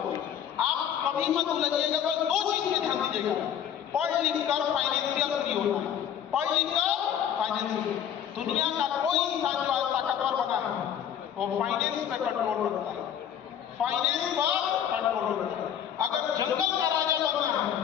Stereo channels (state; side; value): quieter; right; 9.4 dB